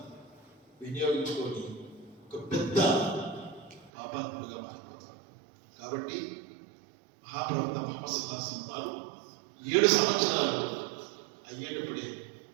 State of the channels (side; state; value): left; drops out; at 3.9 s